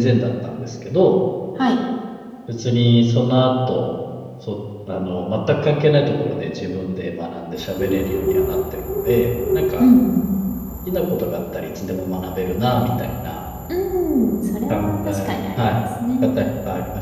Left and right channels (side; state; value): both; identical; correlation 1.00